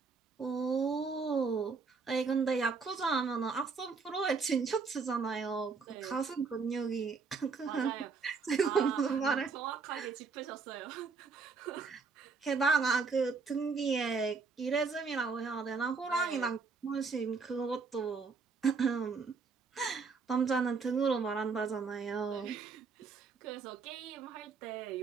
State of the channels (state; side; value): quieter; left; 4.9 dB